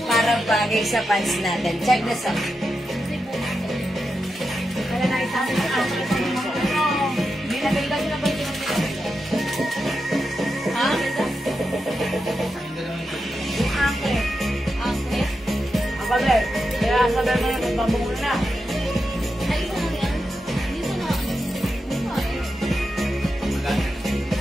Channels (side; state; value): both; normal; correlation 0.88